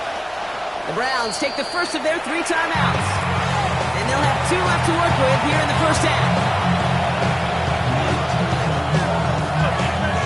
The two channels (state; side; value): identical; both; correlation 1.00